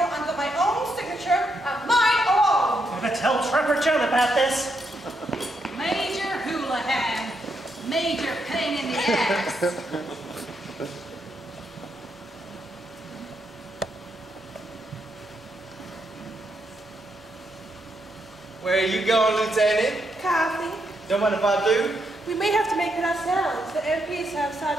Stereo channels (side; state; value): both; normal; correlation 0.79